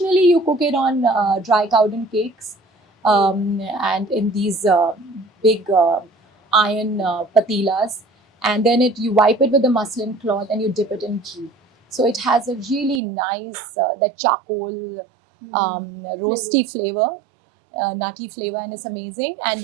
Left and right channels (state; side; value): drops out; left; at 13.0 s